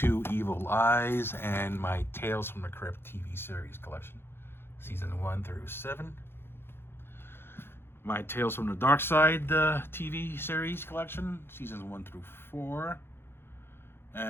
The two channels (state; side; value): late; right; 0.11 ms